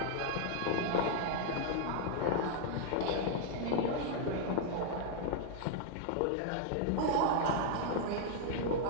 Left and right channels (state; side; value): different; both; correlation 0.00